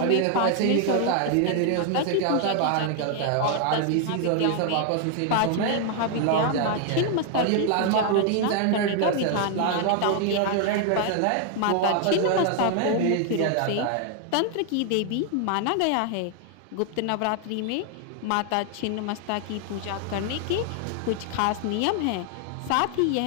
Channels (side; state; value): both; different; correlation 0.00